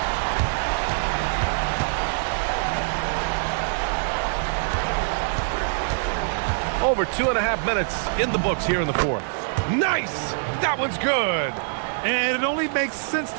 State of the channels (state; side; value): silent; left; digital silence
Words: Over 2.5 minutes in the books here in the fourth. Nice! That one's good. And it only makes sense